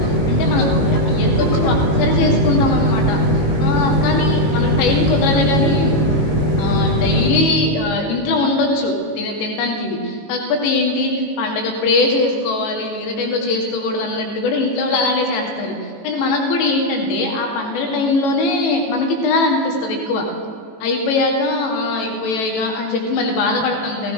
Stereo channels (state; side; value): late; right; 18 ms